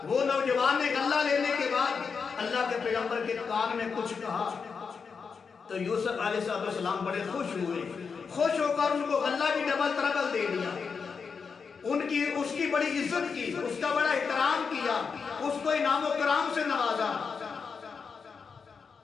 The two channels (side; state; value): right; quieter; 5.6 dB